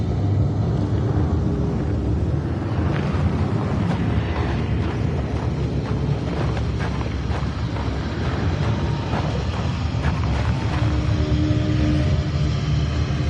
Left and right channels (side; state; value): both; identical; correlation 1.00